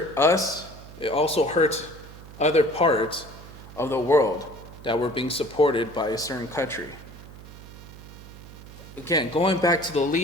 us, it also hurts other parts of the world that were being supported by a certain country. Again, going back to the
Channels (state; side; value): noise; right; hum, 16 dB below the sound